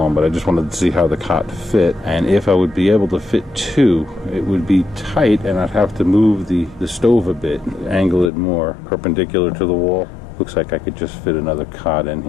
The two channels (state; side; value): drops out; right; at 8.3 s